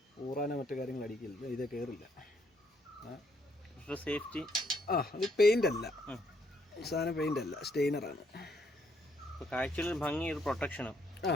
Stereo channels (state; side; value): normal; both; correlation 0.72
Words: ഊറാനോ മറ്റു കാര്യങ്ങൾ അടിക്കില്ല, ഇത് കയറില്ല. സേഫ്റ്റി അത് പെയിൻ്റ് അല്ല, സാധനം പെയിൻ്റ് അല്ല, സ്റ്റെയിനറാണ്. കാഴ്ചയിൽ ഭംഗി, ഒരു പ്രൊട്ടക്ഷനും.